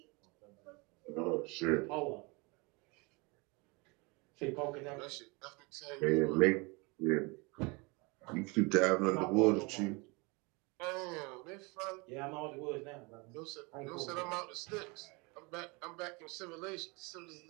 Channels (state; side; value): quieter; left; 28.0 dB